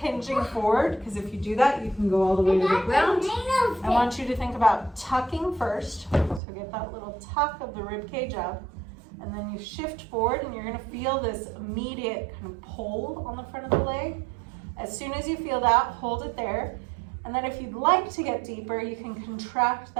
forward, because if you do that, you can go all the way to the ground. I want you to think about tucking first. So get that little tuck of the rib cage up. And then you shift forward and you're gonna feel this immediate kind of pull on the front of the leg. As soon as you feel that, hold it there. And then if you'd like to get deeper, you can contract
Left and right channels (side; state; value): left; drops out; at 6.4 s